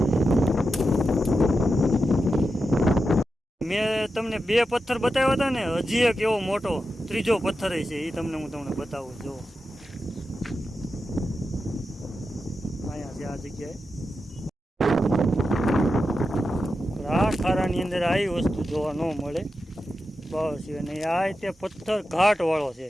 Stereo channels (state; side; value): normal; both; correlation 0.90